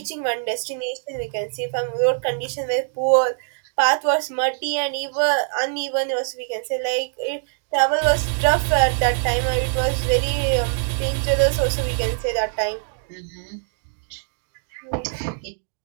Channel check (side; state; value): left; silent; digital silence